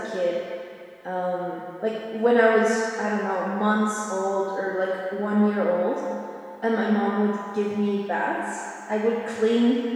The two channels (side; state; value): both; identical; correlation 1.00